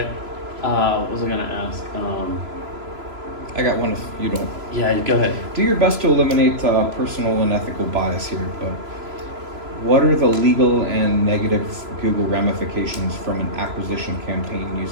what was I gonna ask? I got one if you don't. Yeah, go ahead. Do your best to eliminate personal and ethical bias here, but what are the legal and negative Google ramifications from an acquisition campaign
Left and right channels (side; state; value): left; late; 3.0 ms